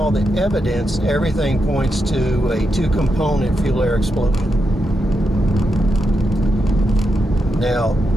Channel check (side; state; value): both; normal; correlation 0.85